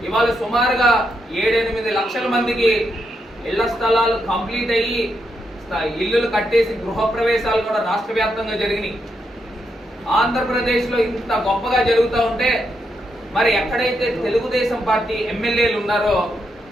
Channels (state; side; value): normal; both; correlation 0.81